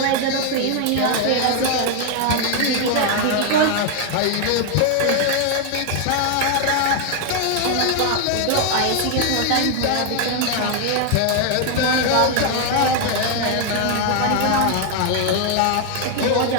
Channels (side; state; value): both; different; correlation 0.00